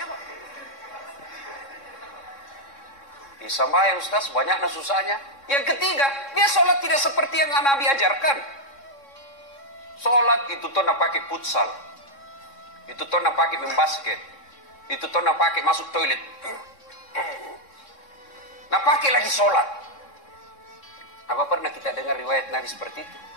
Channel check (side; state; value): right; late; 3.6 ms